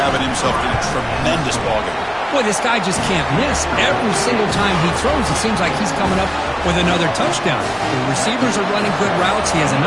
himself in a tremendous ballgame. Boy, this guy just can't miss. Every single time he throws, it seems like he's coming up with another touchdown. The receivers are running good routes. He has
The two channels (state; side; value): identical; both; correlation 1.00